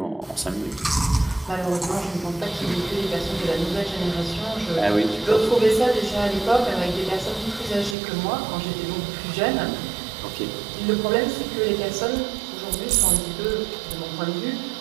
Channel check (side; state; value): left; drops out; at 8.0 s